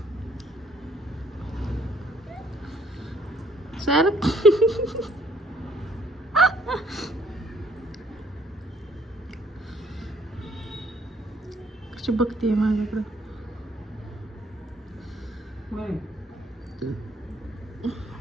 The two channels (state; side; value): normal; both; correlation 0.63